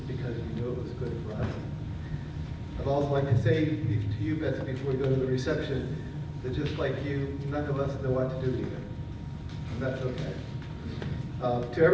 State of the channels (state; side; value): identical; both; correlation 1.00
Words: because you knew it was good for us. I'd also like to say to you, Betsy, before we go to the reception, that just like you, none of us know what to do either. And that's okay. To